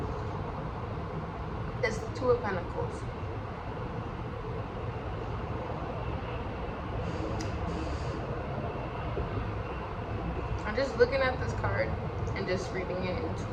It's the Two of Pentacles. I'm just looking at this card and just reading it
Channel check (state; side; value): identical; both; correlation 1.00